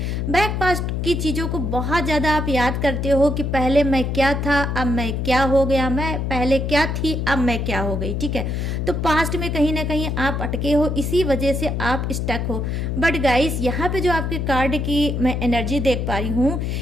बैक पास्ट की चीज़ों को बहुत ज़्यादा आप याद करते हो कि पहले मैं क्या था, अब मैं क्या हो गया, मैं पहले क्या थी, अब मैं क्या हो गई। ठीक है, तो पास्ट में कहीं ना कहीं आप अटके हो, इसी वजह से आप स्टक हो। बट गाइस, यहाँ पे जो आपके कार्ड की मैं एनर्जी देख पा रही हूँ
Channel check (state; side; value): noise; left; hum, 1 dB below the sound